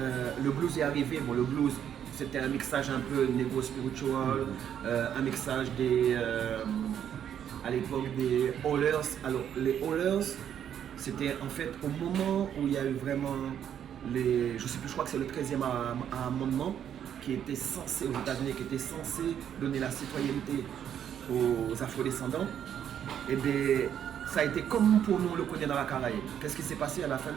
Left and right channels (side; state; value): left; quieter; 9.3 dB